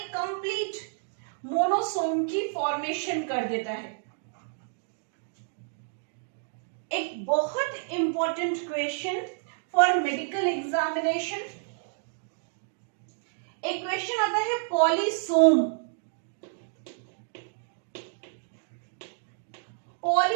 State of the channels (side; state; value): left; silent; digital silence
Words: कंप्लीट मोनोसोम की फॉर्मेशन कर देता है। एक बहुत important question for medical examination, एक क्वेश्चन आता है पॉलीसोम।